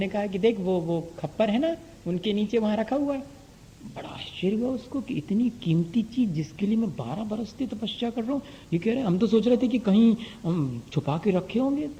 कहा कि देख वो खप्पर है ना, उनके नीचे वहां रखा हुआ है। बड़ा आश्चर्य हुआ उसको कि इतनी कीमती चीज जिसके लिए मैं 12 बरस से तपस्या कर रहा हूँ, ये कह रहे, हम तो सोच रहे थे कि कहीं छुपा के रखे होंगे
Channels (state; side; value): identical; both; correlation 1.00